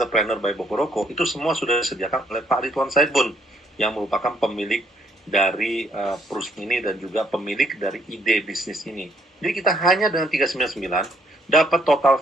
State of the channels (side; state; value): both; normal; correlation 0.69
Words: by Bokoroko, itu semua sudah disediakan oleh Pak Ridwan Saibun, yang merupakan pemilik dari perusahaan ini dan juga pemilik dari ide bisnis ini. Jadi kita hanya dengan 399 dapat total